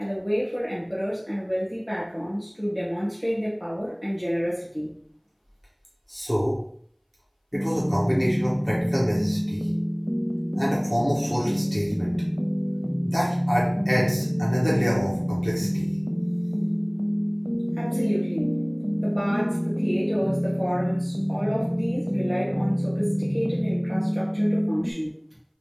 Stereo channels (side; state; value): both; identical; correlation 1.00